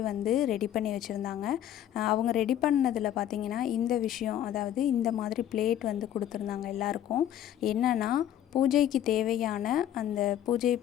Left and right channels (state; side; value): quieter; right; 11.2 dB